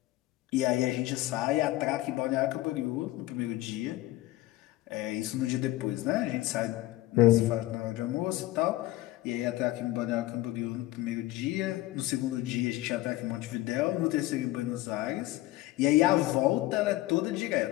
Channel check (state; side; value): quieter; right; 17.0 dB